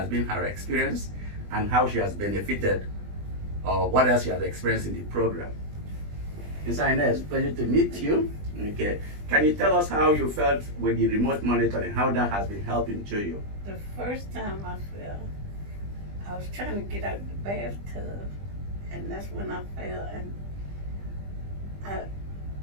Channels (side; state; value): left; late; 20 ms